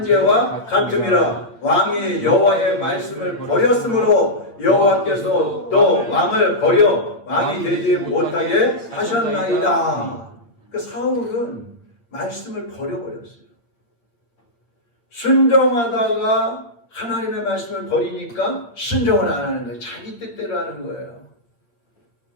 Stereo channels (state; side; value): late; right; 8.7 ms